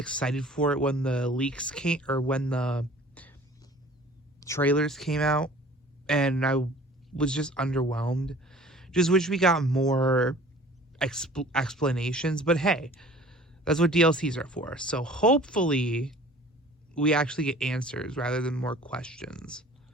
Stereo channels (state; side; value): normal; both; correlation 0.48